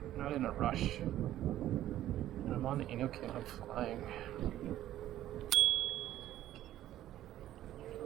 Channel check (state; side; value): quieter; left; 13.1 dB